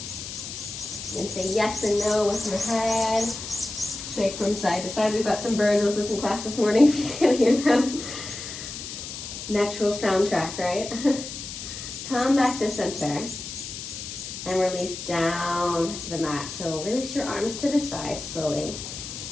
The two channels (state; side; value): noise; left; hiss, 9 dB below the sound